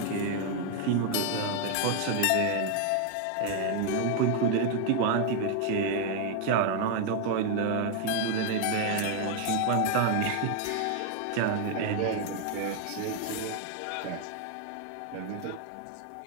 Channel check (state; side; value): different; both; correlation 0.01